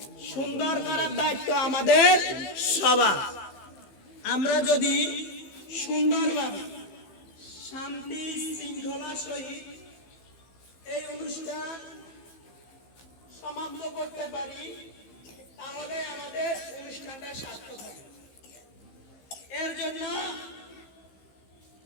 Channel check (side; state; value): right; late; 15 ms